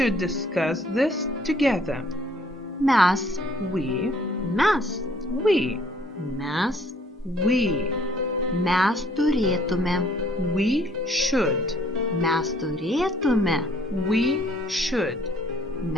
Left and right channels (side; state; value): both; normal; correlation 0.61